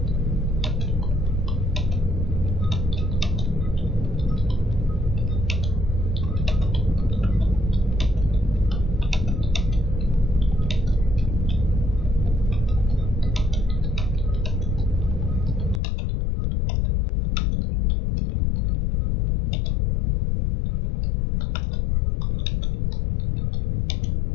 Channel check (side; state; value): right; drops out; at 15.8 s